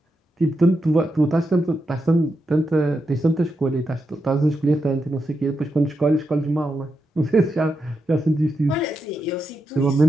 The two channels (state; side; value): normal; both; correlation 0.85